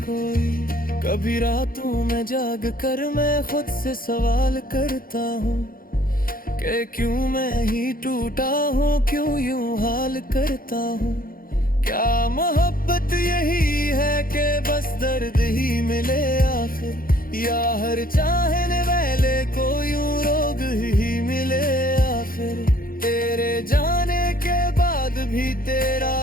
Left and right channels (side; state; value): right; late; 0.42 ms